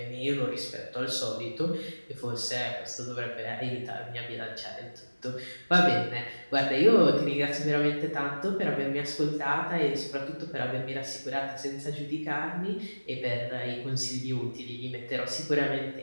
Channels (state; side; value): inverted; both; correlation -1.00